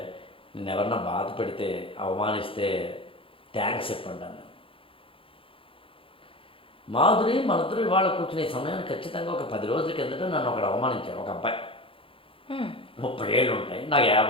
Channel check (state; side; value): late; right; 0.26 ms